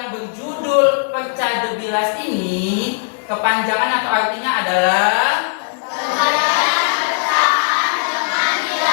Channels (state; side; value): silent; right; digital silence